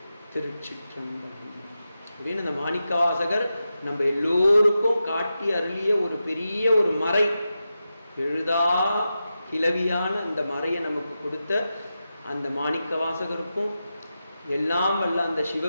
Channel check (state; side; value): inverted; both; correlation -0.90